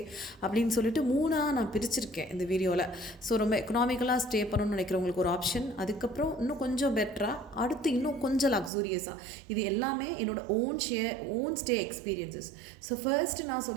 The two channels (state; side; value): drops out; left; at 8.7 s